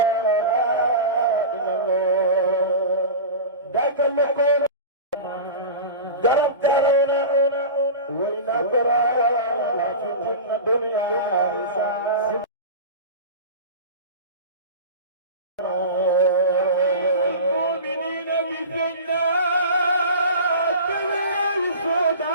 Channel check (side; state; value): both; inverted; correlation -0.31